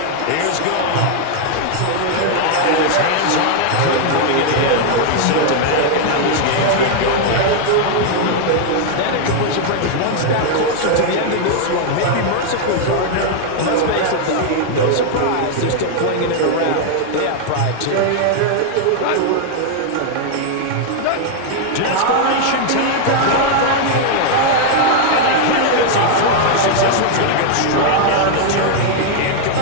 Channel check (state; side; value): different; both; correlation 0.00